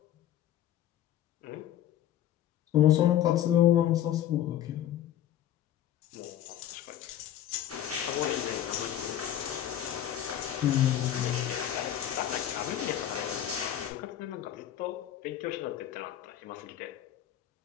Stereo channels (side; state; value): right; quieter; 11.3 dB